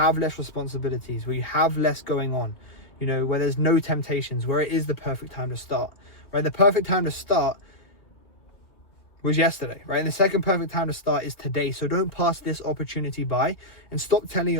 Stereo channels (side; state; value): right; late; 2.7 ms